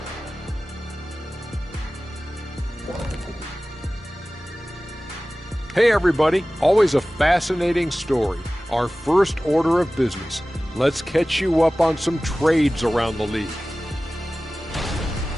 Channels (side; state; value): both; normal; correlation 0.97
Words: Hey everybody, always a fascinating story. Our first order of business. Let's catch you up on some trades around the league.